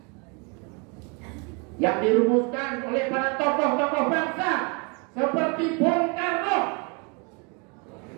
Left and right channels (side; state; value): left; quieter; 32.1 dB